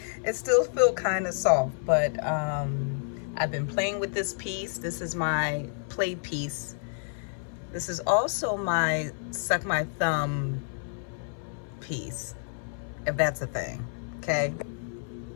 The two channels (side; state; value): right; silent; 58 dB below the other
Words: It still feels kind of soft, but I've been playing with this piece. This is my play piece. This is also my suck my thumb piece, if that's a thing, okay?